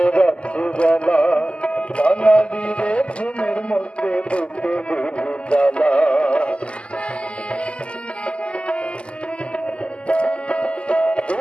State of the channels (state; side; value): late; right; 0.053 ms